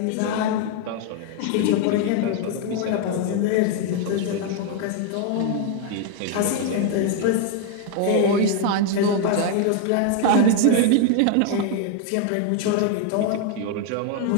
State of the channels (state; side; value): different; both; correlation 0.00